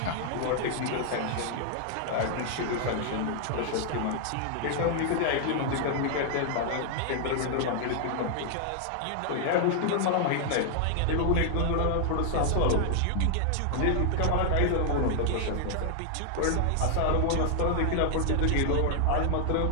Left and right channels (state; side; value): different; both; correlation 0.00